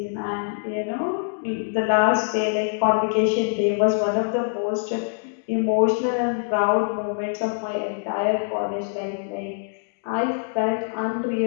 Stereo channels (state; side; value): silent; right; digital silence